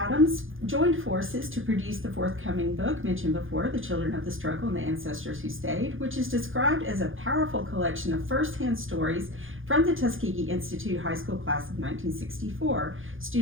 joined forces to produce the forthcoming book mentioned before, The Children of the Struggle and the Ancestors Who Stayed, which is described as a powerful collection of first-hand stories from the Tuskegee Institute High School Class of 1964,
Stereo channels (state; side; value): late; left; 0.58 ms